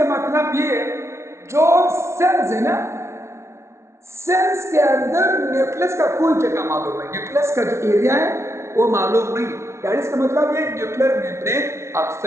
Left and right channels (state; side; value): late; left; 0.13 ms